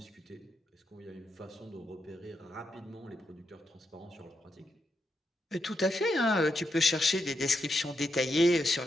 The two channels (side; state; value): both; normal; correlation 0.83